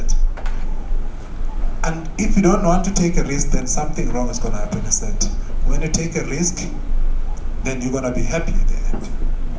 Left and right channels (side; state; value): both; identical; correlation 1.00